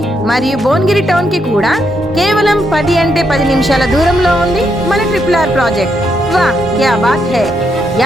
మరియు భువనగిరి టౌన్ కి కూడా కేవలం 10 అంటే 10 నిమిషాల దూరంలో ఉంది మన ట్రిపుల్ ప్రాజెక్ట్. వా క్యా బాత్ హై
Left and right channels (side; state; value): both; normal; correlation 0.78